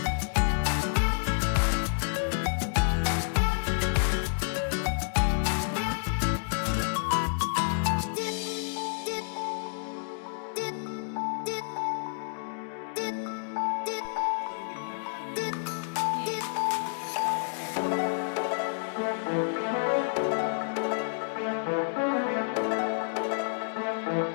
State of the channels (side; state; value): right; silent; 58 dB below the other